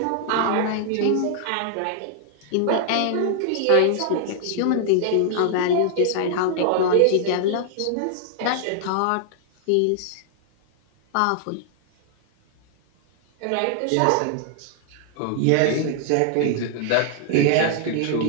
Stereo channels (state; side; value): different; both; correlation -0.01